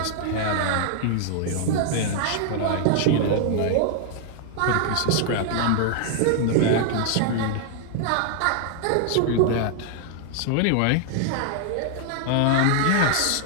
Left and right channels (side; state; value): both; different; correlation 0.00